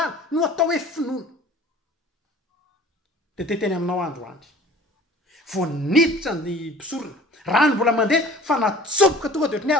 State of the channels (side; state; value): both; normal; correlation 0.46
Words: no atao hoe finoana de teteny aminao androandry vo niditra ny mpisorona rano mbola mandeha fa natsopoka tonga de ohatrany